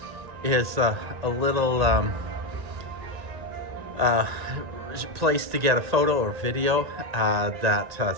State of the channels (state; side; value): late; left; 1.8 ms